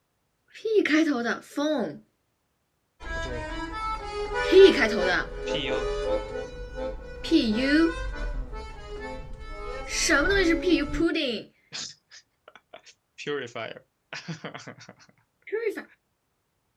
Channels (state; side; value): identical; both; correlation 1.00